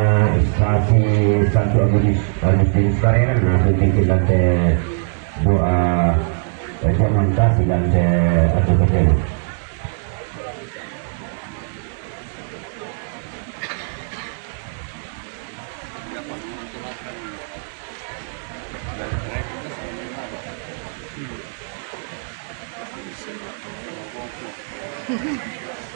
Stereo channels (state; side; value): silent; left; digital silence